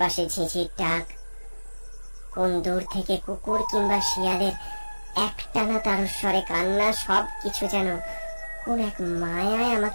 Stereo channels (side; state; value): both; inverted; correlation -1.00